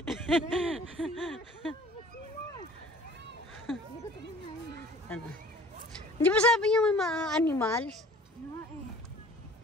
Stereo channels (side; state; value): both; normal; correlation 0.48